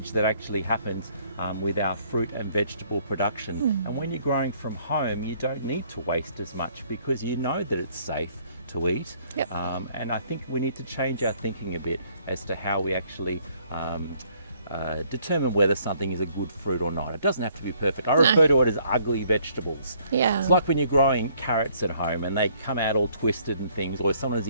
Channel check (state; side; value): inverted; both; correlation -0.64